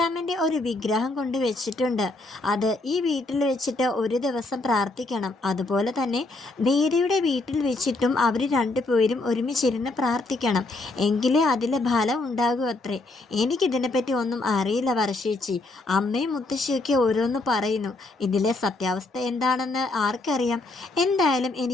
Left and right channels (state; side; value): quieter; right; 3.0 dB